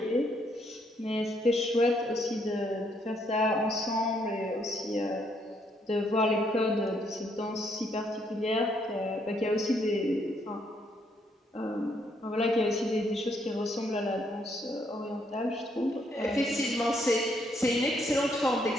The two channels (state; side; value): normal; both; correlation 0.72